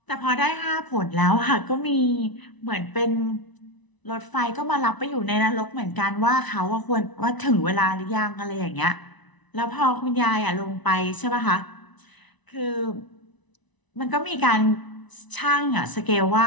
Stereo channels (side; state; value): right; late; 1.0 ms